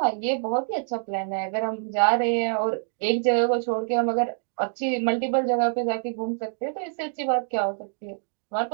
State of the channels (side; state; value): left; silent; digital silence